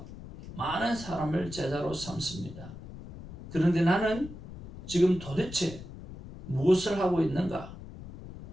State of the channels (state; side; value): noise; left; rumble, 14 dB below the sound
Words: 많은 사람을 제자로 삼습니다. 그런데 나는 지금 도대체 무엇을 하고 있는가?